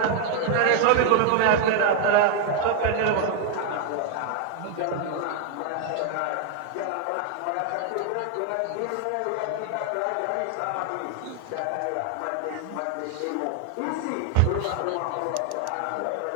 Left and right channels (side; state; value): both; different; correlation 0.00